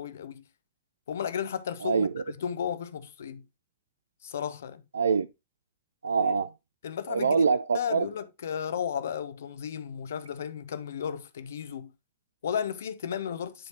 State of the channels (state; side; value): inverted; both; correlation -0.72